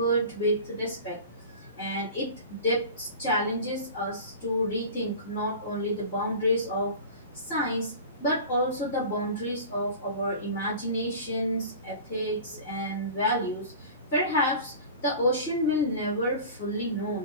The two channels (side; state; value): both; inverted; correlation -0.36